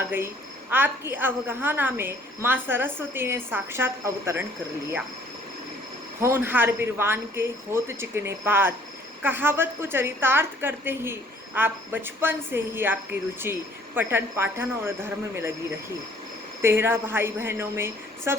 गई। आपकी अवगाहना में माँ सरस्वती ने साक्षात अवतरण कर लिया। होनहार बिरवान के होत चिकने पात कहावत को चरितार्थ करते ही आप बचपन से ही आपकी रुचि पठन पाठन और धर्म में लगी रही। 13 भाई बहनों में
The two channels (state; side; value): normal; both; correlation 0.58